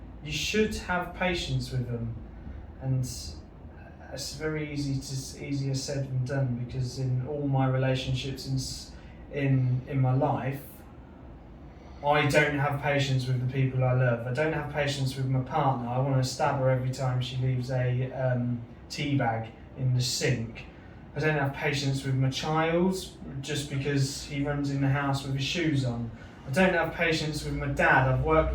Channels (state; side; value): identical; both; correlation 1.00